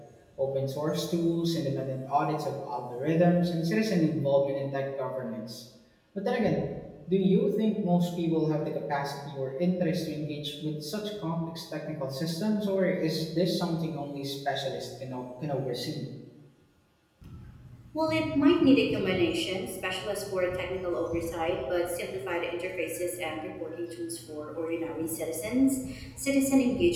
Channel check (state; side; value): identical; both; correlation 1.00